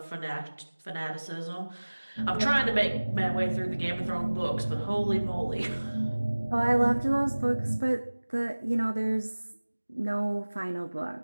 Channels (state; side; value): inverted; both; correlation -1.00